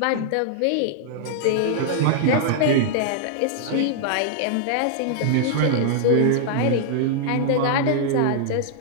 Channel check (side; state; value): both; different; correlation -0.01